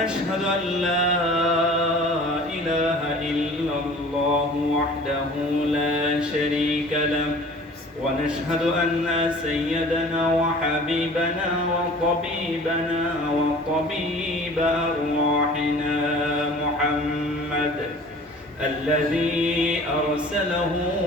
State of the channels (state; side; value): normal; both; correlation 0.45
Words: أن لا إله إلا الله وحده لا شريك له. ونشهد أن سيدنا وحبيبنا وطبيبنا وطبيب أرواحنا محمد الذي أرسله